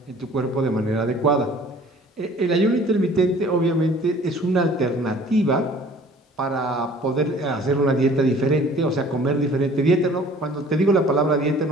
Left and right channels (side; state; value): both; normal; correlation 0.51